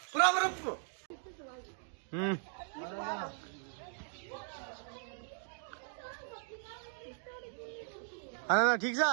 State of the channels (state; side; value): silent; left; 52 dB below the other